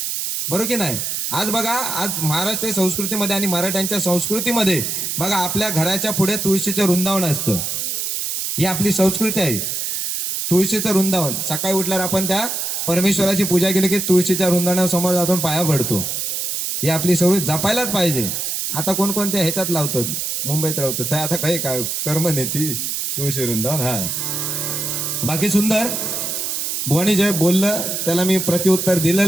बरोबर की नाही. आज बघा, आज महाराष्ट्र संस्कृतीमध्ये आणि मराठ्यांच्या संस्कृतीमध्ये बघा, आपल्या घराच्या पुढे तुळशीचं वृंदावन असतं. ही आपली संस्कृती आहे, तुळशीचं वृंदावन. सकाळी उठल्यावर आपण त्या परमेश्वराची पूजा केली की तुळशीच्या वृंदावनासमोर जाऊन पाया पडतो. ही आपली संस्कृती जपायलाच पाहिजे. आता कोणकोणत्या ह्याच्यात लावतात, मुंबईत राहतात, तर आता काही काय कर्म नेती तुळशी वृंदावन. हा, बाकी सुंदर. बुवानी जे बोललं त्याला मी प्रत्युत्तर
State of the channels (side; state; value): right; noise; hiss, 2 dB below the sound